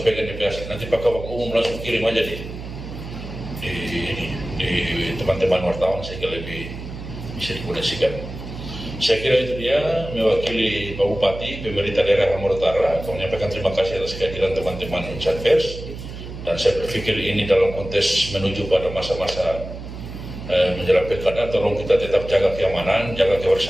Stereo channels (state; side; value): noise; right; hum, 10 dB below the sound